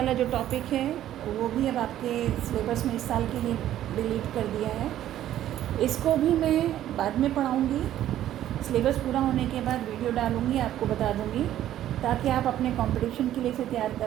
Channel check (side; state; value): left; quieter; 12.3 dB